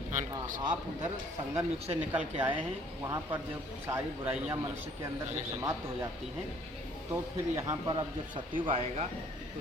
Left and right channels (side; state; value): both; normal; correlation 0.59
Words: आप उधर संगम युग से निकल के आए हैं, वहाँ पर जब सारी बुराइयाँ मनुष्य के अंदर जब समाप्त हो जाती हैं, तो फिर यहाँ पर अब जब सतयुग आएगा तो